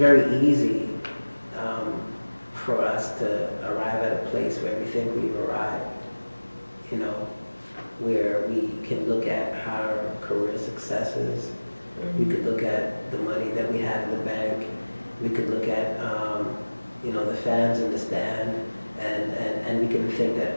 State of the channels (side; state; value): both; inverted; correlation -1.00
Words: easy for us to arrive at a place where we think we've arrived. Where we can look at our career successes, we could look at the money that we have in the bank, we could look at the fans in the stand, and we can think that